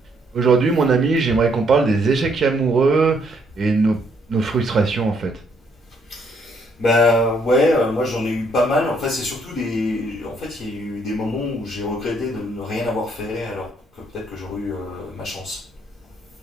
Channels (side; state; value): both; normal; correlation 0.70